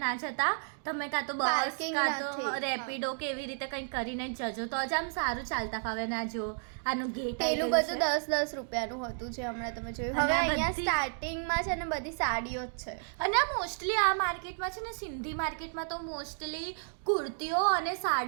ના જતા, તમે કાં તો બસ કાં તો રેપિડો કે એવી રીતે કંઈક કરીને જ જજો, તો જ આમ સારું ચાલતા ફાવે. ના જો આનું ગેટ પેલું બધું 10-10 રૂપિયાનું હતું જે હમણાં તમે જોયું. હવે અહીંયા સ્ટાર્ટિંગમાં છે ને બધી સાડીઓ જ છે. અને મોસ્ટલી આ માર્કેટમાં છે ને, સિંધી માર્કેટમાં તો મોસ્ટલી કુર્તીઓ અને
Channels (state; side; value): silent; left; digital silence